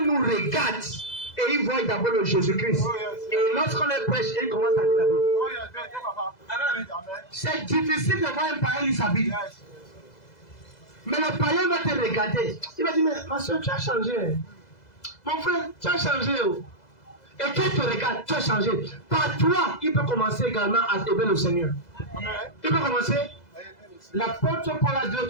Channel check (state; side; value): late; right; 2.0 ms